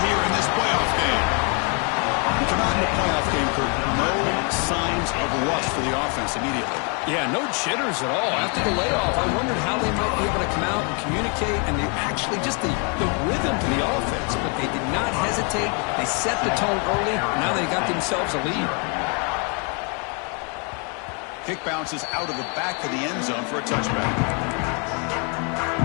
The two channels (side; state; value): right; quieter; 36.3 dB